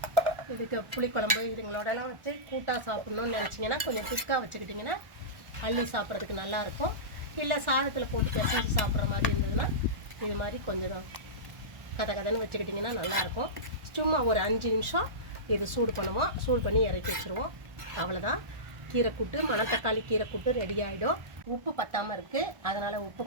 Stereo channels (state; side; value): late; left; 1.4 ms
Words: இதுக்கு புளிக்குழம்பு இதுங்களோடலாம் வச்சு கூட்டாக சாப்பிட்ணுன்னு நினச்சிங்கன்னா கொஞ்சம் திக்காக வச்சுக்கிட்டிங்கன்னா அள்ளி சாப்பிட்றதுக்கு நல்லாயிருக்கும். இல்லை சாதத்தில் போட்டு பிசைஞ்சு சாப்பிட்ற மாதிரி இருந்ததுன்னா இது மாதிரி கொஞ்சம் கதன்னு வச்சுக்கிட்டிங்கன்னா நல்லாயிருக்கும். சும்மா ஒரு 5 நிமிஷம் இது சூடு பண்ணுவோம். சூடு பண்ணி இறக்கி வச்சுருவோம். அவ்வளோதான், கீரைக்கூட்டு, மணத்தக்காளி கீரைக்கூட்டு ரெடி ஆகிடும். உப்பு பத்தாமல் இருக்குது, அதனால் உப்பு